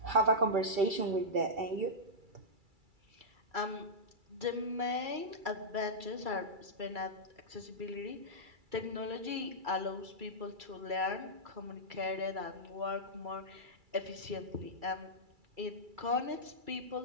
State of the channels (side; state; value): left; late; 2.3 ms